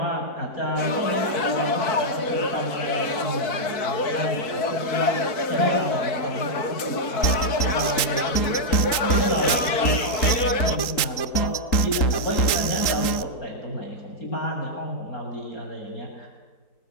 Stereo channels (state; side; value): late; right; 3.9 ms